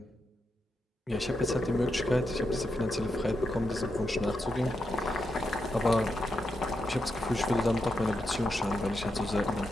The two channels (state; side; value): normal; both; correlation 0.84